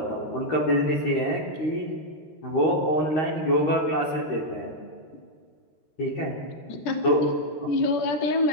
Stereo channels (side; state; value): right; late; 13 ms